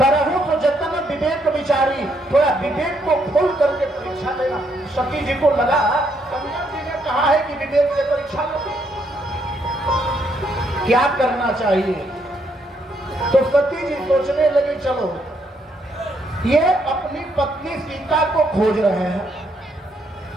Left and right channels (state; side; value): normal; both; correlation 0.73